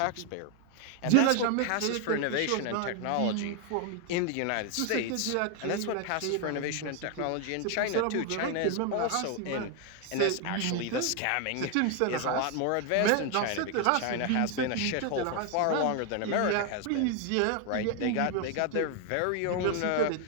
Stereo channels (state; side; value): different; both; correlation 0.01